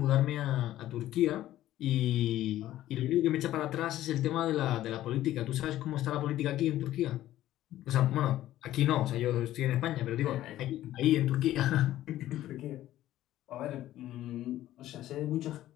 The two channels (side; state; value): right; quieter; 13.9 dB